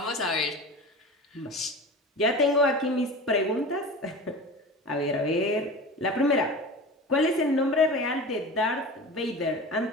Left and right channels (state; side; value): normal; both; correlation 0.33